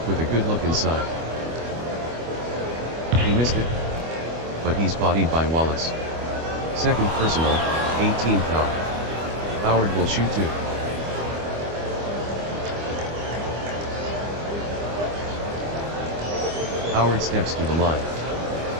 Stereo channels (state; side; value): late; left; 25 ms